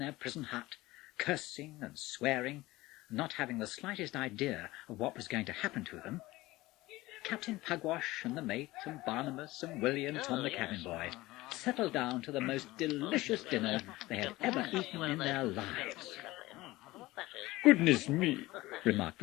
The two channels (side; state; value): right; quieter; 18.9 dB